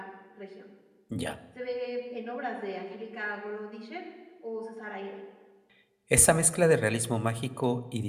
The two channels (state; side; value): identical; both; correlation 1.00